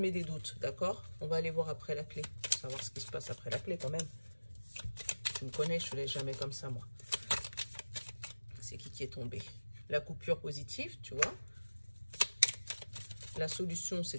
des doutes, d'accord? On va aller voir après la clé. Pour savoir ce qui se passe après la clé quand même. Tu me connais, je ne te laisse jamais comme ça, moi. C'est qui est tombé? La coupure positive, tu vois. La solution,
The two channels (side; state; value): both; inverted; correlation -1.00